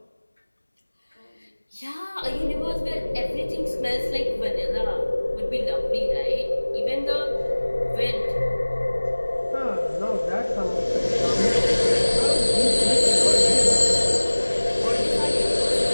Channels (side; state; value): both; inverted; correlation -1.00